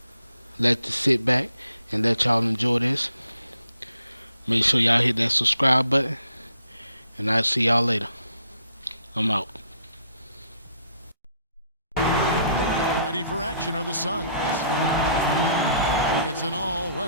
let you sit back and let y'all enjoy this. Make sure y'all hit that subscribe button, and I'll see y'all later. I'm out. Ready for action are the Suns. It's an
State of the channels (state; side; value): inverted; both; correlation -0.67